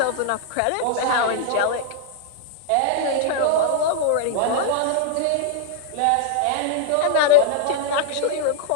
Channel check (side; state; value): both; different; correlation -0.01